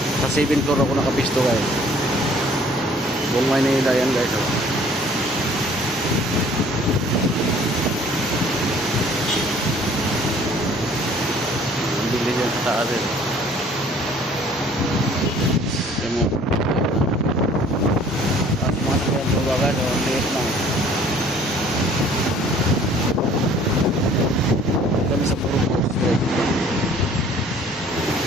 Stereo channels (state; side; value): normal; both; correlation 0.55